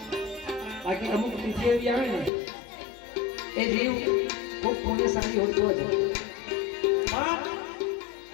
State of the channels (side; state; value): right; drops out; at 2.3 s